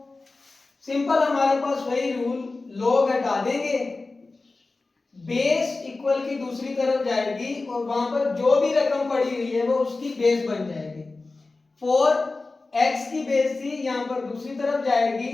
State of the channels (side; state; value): right; quieter; 3.5 dB